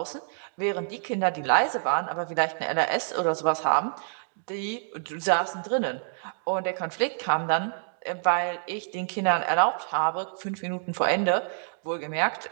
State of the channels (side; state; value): left; silent; digital silence